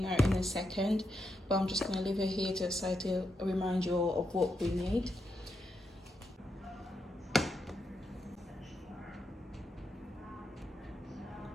in a second, but I'm just gonna leave it here to the side to remind you of what we need.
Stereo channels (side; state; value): both; normal; correlation 0.83